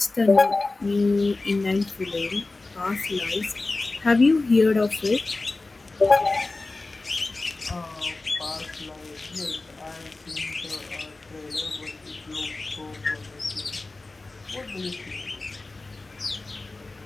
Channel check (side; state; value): right; quieter; 3.3 dB